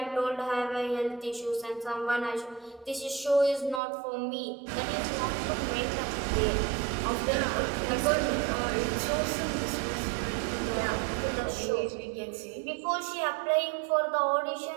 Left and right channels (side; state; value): left; drops out; at 3.8 s